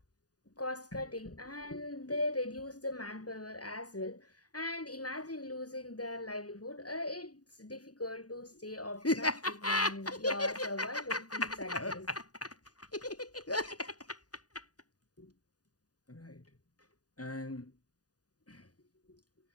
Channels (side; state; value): right; late; 0.68 ms